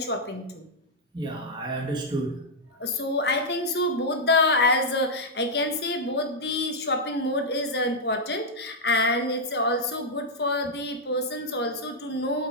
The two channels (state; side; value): normal; both; correlation -0.05